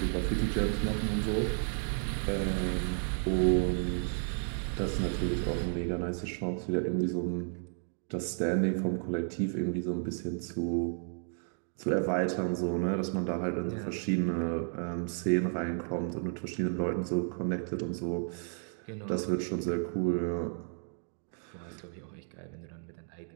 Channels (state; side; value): silent; left; 56 dB below the other